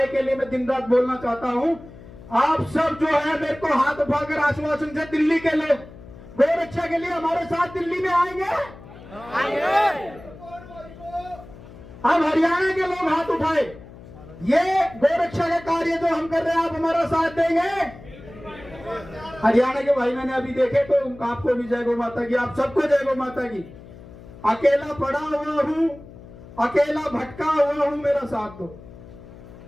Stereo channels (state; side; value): noise; left; hum, 18 dB below the sound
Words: के लिए मैं दिन रात बोलना चाहता हूं। आप सब जो है मेरे को हाथ उठाकर आश्वासन से, दिल्ली के लोग गोरक्षा के लिए हमारे साथ दिल्ली में आएंगे। अब हरियाणा के लोग हाथ उठाए, ये गोरक्षा का कार्य जो हम कर रहे हैं आप हमारा साथ देंगे। हरियाणा के भाई मैंने अभी देखे तो आपको भी जय गौ माता की, आप सबको जय गौ माता की। अकेला पड़ा हुआ हूं, अकेला भटका हुआ हूं, मेरा साथ दो।